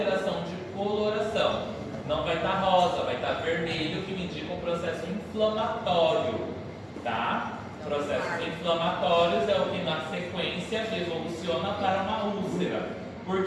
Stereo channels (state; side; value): identical; both; correlation 1.00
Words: de coloração. Não vai estar rosa, vai estar vermelho, que me indica um processo inflamatório, tá? Processos inflamatórios é o que na sequência evoluciona para uma úlcera. Por